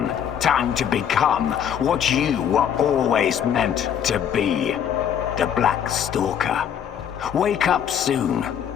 Time to become what you were always meant to be. The Black Stalker. Wake up soon.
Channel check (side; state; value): right; quieter; 8.9 dB